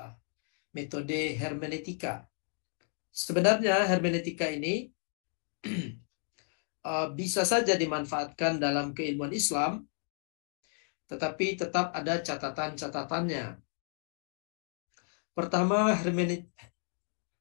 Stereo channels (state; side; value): silent; right; 56 dB below the other